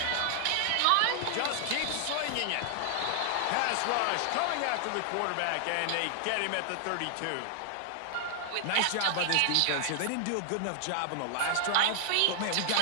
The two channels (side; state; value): both; different; correlation 0.00